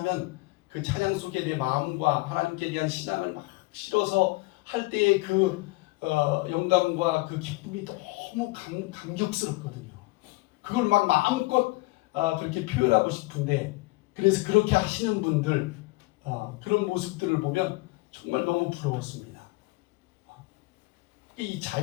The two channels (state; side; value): quieter; right; 22.8 dB